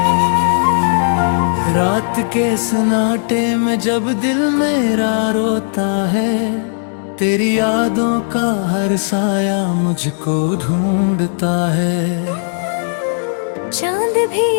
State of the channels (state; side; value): silent; right; digital silence